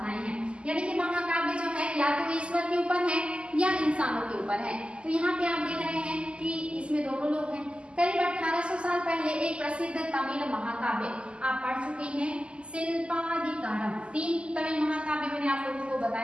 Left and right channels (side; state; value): left; late; 0.052 ms